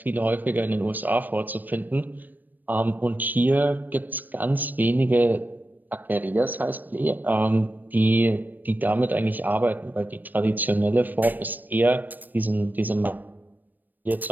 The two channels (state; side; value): late; left; 0.089 ms